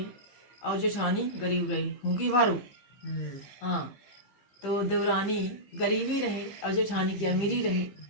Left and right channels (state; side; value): late; right; 15 ms